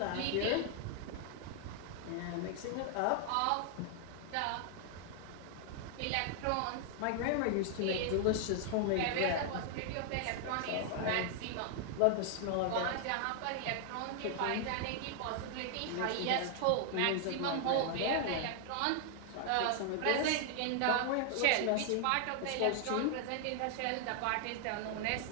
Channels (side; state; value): both; different; correlation 0.00